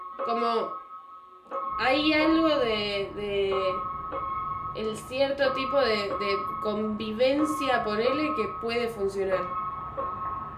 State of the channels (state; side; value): identical; both; correlation 1.00